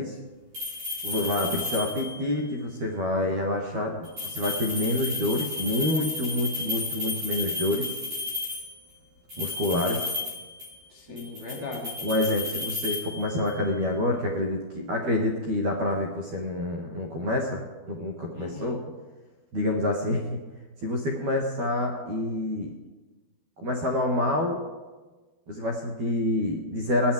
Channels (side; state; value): left; late; 12 ms